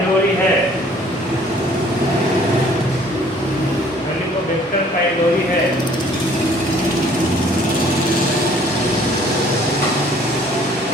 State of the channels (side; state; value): both; normal; correlation 0.56